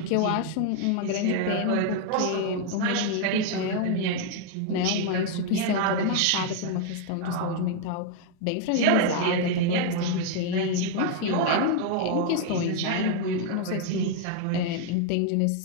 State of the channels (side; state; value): both; different; correlation 0.00